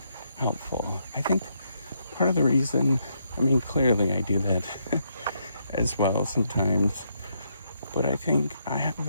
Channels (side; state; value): both; inverted; correlation -0.76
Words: helpful. I think part of the reason, clearly I do that as well sometimes, but I think I have